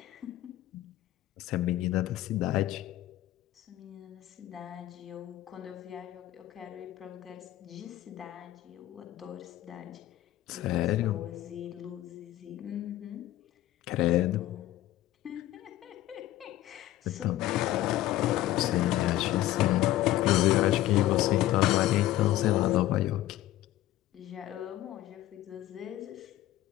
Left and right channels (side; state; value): right; quieter; 14.6 dB